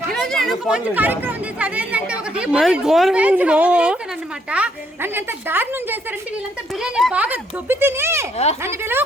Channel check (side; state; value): both; normal; correlation 0.71